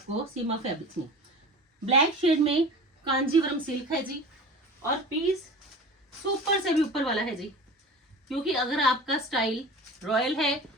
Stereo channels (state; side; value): normal; both; correlation 0.36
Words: सीमा फैब्रिक्स में। ब्लैक शेड में कांजीवरम सिल्क है जी, और पीस सुपर से भी ऊपर वाला है जी, क्योंकि अगर आपका स्टाइल रॉयल है,